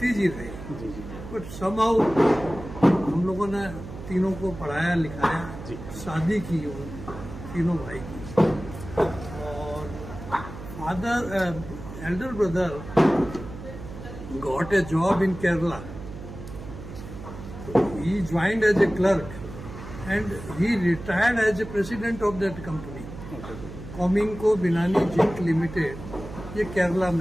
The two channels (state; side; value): noise; right; hum, 12 dB below the sound